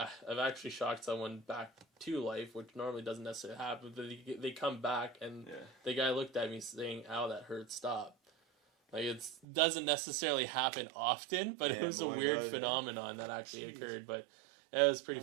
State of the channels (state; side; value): drops out; left; at 9.5 s